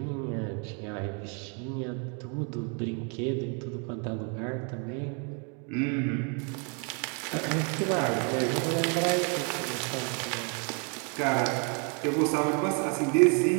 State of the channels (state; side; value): quieter; left; 37.3 dB